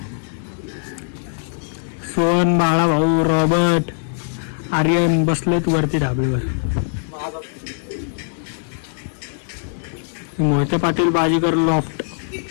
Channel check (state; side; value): silent; right; digital silence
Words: सोन, बाळा भाऊ, रॉबर्ट, आर्यन बसलेत वरती ढाबळीवर. मोहिते पाटील बाजीगर लॉफ्ट.